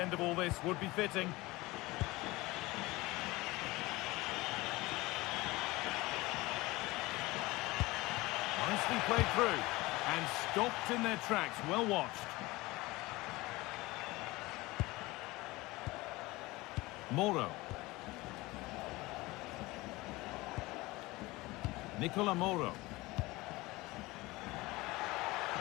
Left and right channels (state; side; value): quieter; right; 20.9 dB